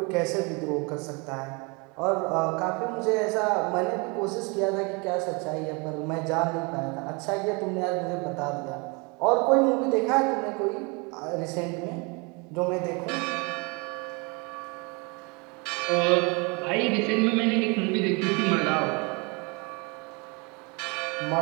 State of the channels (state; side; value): quieter; left; 30.1 dB